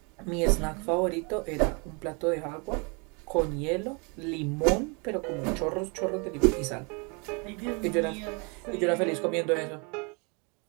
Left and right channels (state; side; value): quieter; left; 32.6 dB